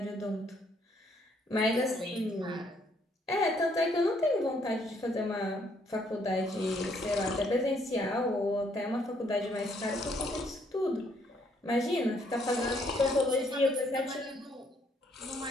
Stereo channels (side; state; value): both; normal; correlation 0.69